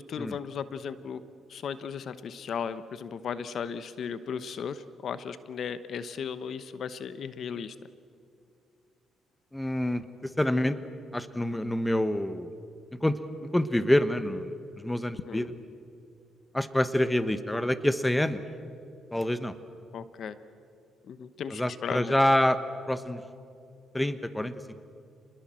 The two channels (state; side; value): normal; both; correlation 0.95